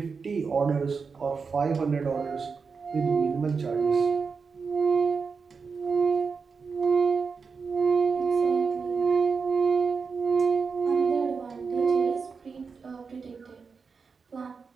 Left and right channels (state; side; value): quieter; left; 5.2 dB